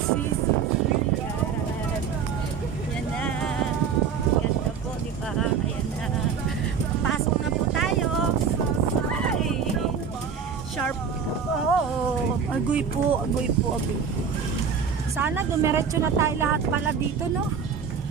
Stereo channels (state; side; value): quieter; left; 6.6 dB